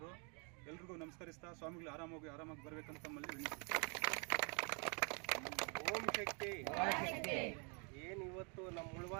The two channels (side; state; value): left; quieter; 35.8 dB